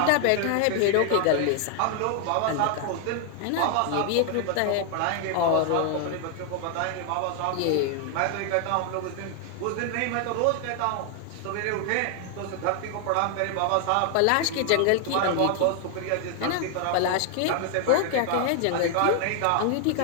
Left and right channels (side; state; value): both; different; correlation 0.00